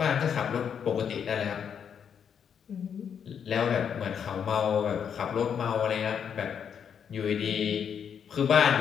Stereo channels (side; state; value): right; quieter; 7.7 dB